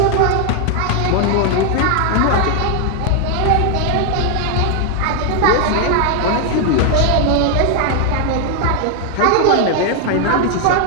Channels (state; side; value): different; both; correlation 0.00